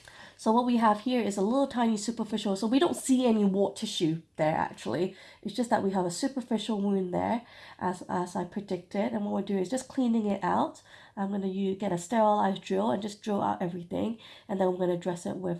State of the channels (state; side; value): identical; both; correlation 1.00